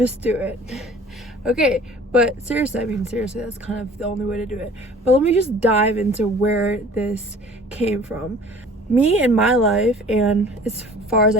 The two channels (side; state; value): both; normal; correlation 0.48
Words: do it. Okay, but seriously, that's kind of the only way to do it. But let me just dive into where this came from. Me in my life, and as far as